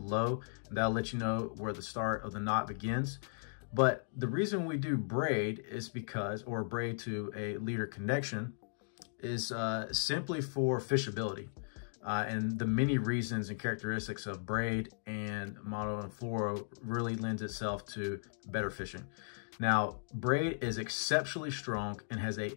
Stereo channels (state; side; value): silent; right; digital silence